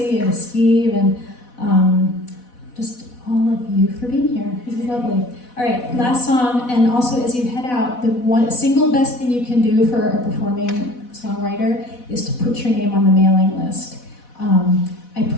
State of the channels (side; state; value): right; late; 4.1 ms